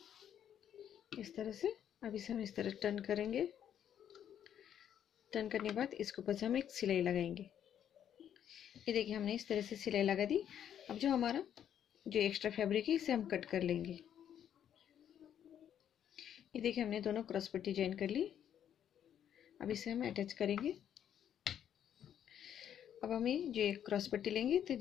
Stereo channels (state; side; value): quieter; right; 9.7 dB